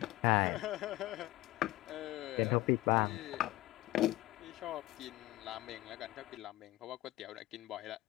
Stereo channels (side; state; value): right; quieter; 18.0 dB